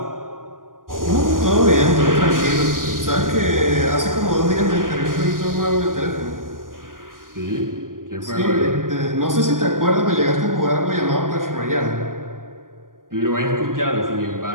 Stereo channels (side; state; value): left; late; 0.90 ms